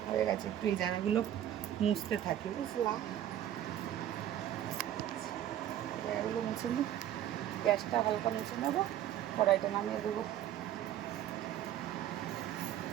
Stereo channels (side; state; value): left; quieter; 11.6 dB